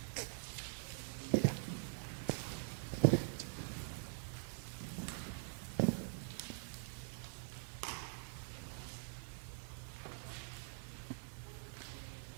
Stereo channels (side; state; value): left; silent; digital silence